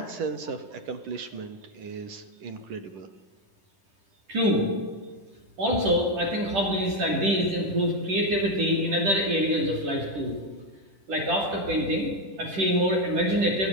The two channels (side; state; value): left; late; 10 ms